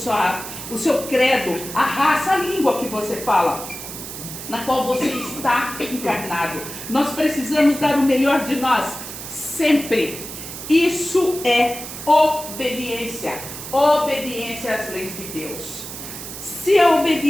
o seu credo, a raça, a língua que você fala, na qual você está encarnado. Nós precisamos dar o melhor de nós, sempre. Isso é obediência. Obediência às leis de Deus. Se a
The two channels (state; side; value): noise; right; hiss, 10 dB below the sound